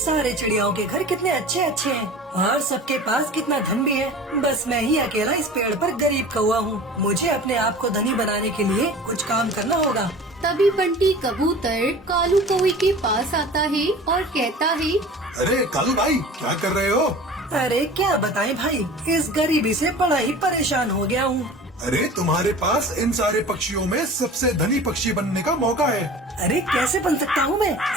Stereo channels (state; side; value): normal; both; correlation 0.40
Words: चिड़ियाओं के घर कितने अच्छे अच्छे हैं और सबके पास कितना धन भी है। बस मैं ही अकेला इस पेड़ पर गरीब कौवा हूँ। मुझे अपने आप को धनी बनाने के लिए कुछ काम करना होगा। तभी बंटी कबूतर कालू कौवे के पास आता है और कहता है, अरे कालू भाई, क्या कर रहे हो? अरे क्या बताएं भाई, इस गरीबी से बड़ा ही परेशान हो गया हूँ। अरे तुम्हारे पास इन सारे पक्षियों में सबसे धनी पक्षी बनने का मौका है। अरे कैसे बन सकता हूँ